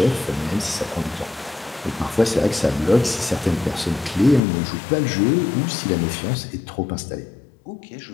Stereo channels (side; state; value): right; drops out; at 4.4 s